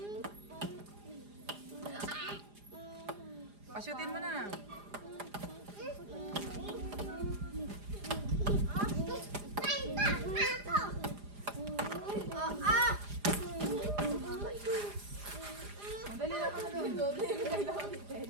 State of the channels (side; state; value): left; late; 4.9 ms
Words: Pasyutin mo na. Madali lang ka na doon.